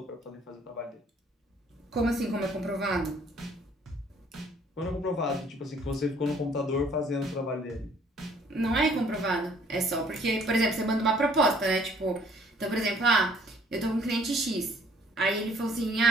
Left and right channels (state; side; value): normal; both; correlation 0.60